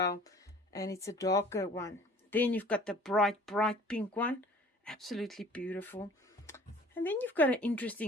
And it's a darker one. Then you've got the bright pink one. Absolutely beautiful. And then you've got an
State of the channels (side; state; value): both; normal; correlation 0.49